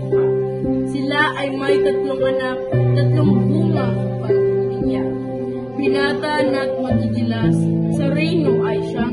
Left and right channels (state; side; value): noise; right; rumble, 25 dB below the sound